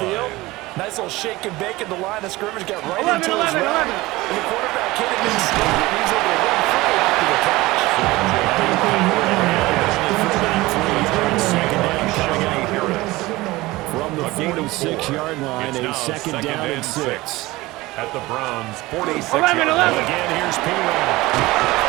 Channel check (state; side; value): quieter; left; 19.8 dB